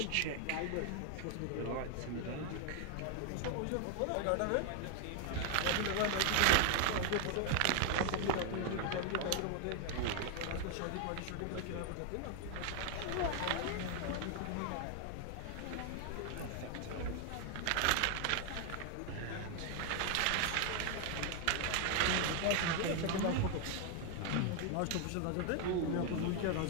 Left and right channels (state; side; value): different; both; correlation 0.00